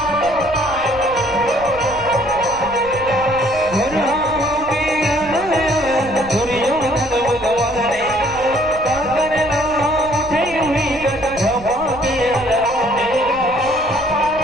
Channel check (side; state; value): right; noise; rumble, 16 dB below the sound